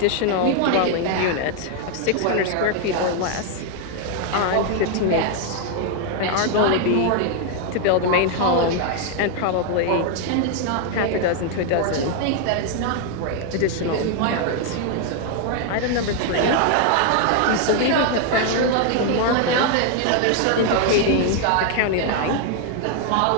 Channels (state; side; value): different; both; correlation 0.00